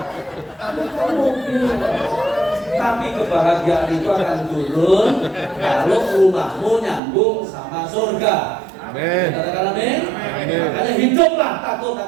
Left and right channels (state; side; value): drops out; left; at 7.0 s